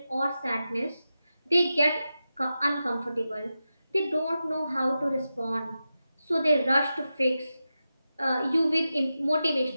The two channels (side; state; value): both; inverted; correlation -0.91